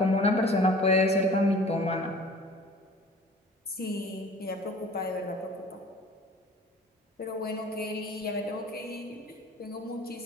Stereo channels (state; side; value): normal; both; correlation 0.47